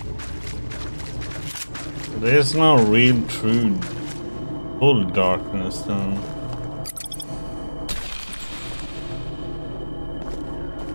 There's no real true full darkness though.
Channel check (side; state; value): both; inverted; correlation -1.00